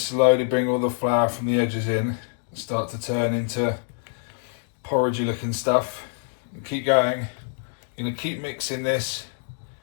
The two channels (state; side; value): silent; right; digital silence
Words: bring all the flour from the edges in and start to turn into porridgey looking stuff. And keep going. You're going to keep mixing this